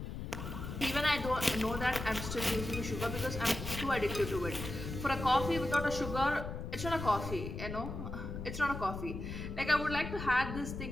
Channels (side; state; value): left; noise; rumble, 7 dB below the sound